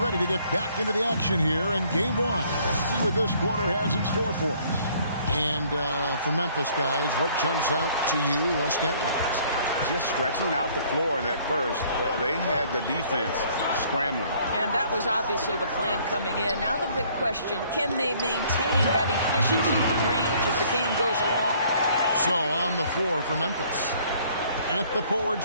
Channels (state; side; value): inverted; both; correlation -0.60